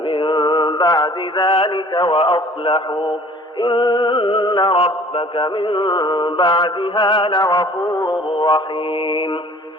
بعد ذلك وأصلحوا إن ربك من بعدها لغفور رحيم.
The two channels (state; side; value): normal; both; correlation 0.51